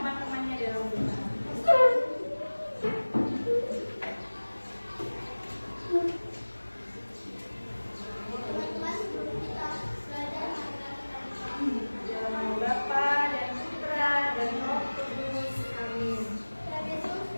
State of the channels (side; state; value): both; inverted; correlation -1.00